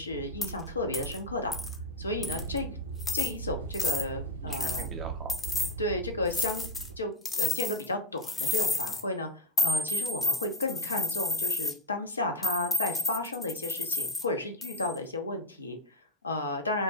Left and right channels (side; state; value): both; normal; correlation 0.19